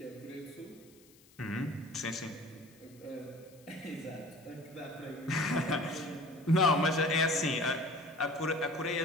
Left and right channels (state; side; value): noise; left; hiss, 27 dB below the sound